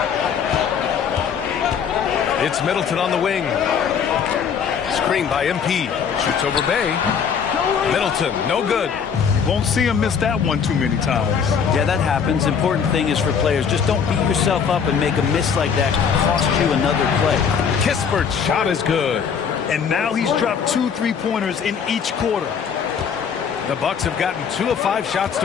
It's Middleton on the wing. Screen by MP. Shoots over Bay. Middleton, no good. Won't see him miss that one too many times. Yeah, that happens. Important thing is for players, just don't beat yourself up and make a miss like that cost you another play. Kispert's shot is good. And now he's dropped 2 3-pointers in each quarter. The Bucks have gotten 2 of 5 shots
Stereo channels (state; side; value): quieter; right; 6.9 dB